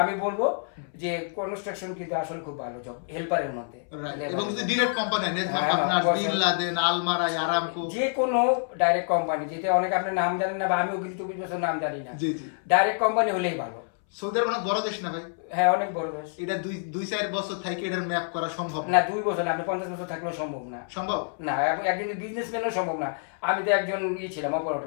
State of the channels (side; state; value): right; silent; 60 dB below the other